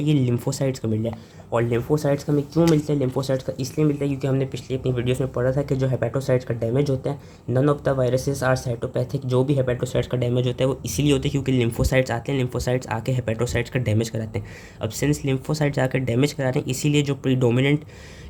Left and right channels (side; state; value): both; identical; correlation 1.00